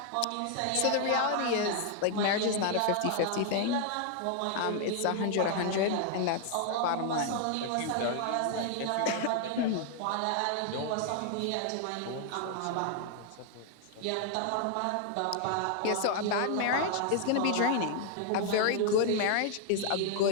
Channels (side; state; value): both; different; correlation 0.00